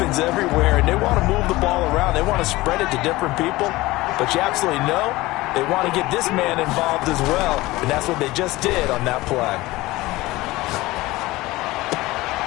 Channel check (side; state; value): right; quieter; 19.4 dB